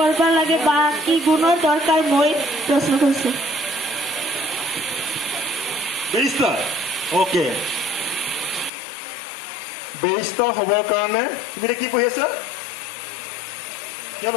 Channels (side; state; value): right; drops out; at 8.7 s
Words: লাগে বা কি গুণৰ দৰকাৰ মই প্ৰশ্ন কৰিছোঁ। বেৰিষ্টাৰ অ'কে, বেৰিষ্টাৰ হ'বৰ কাৰণে তুমি এতিয়া কি পঢ়ি আছা? কিমান